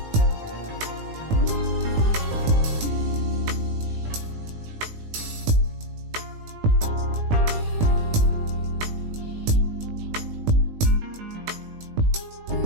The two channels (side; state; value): left; late; 18 ms